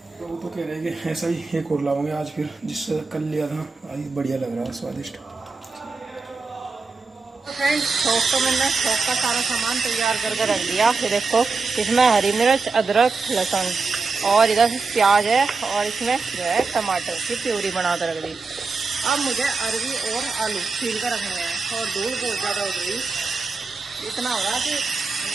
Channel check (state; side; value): quieter; left; 4.2 dB